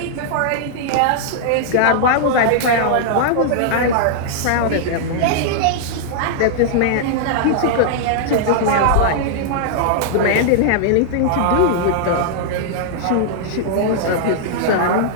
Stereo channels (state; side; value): different; both; correlation -0.01